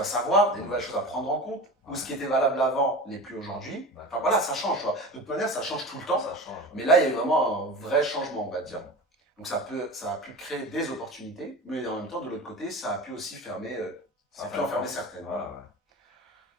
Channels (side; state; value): both; normal; correlation 0.32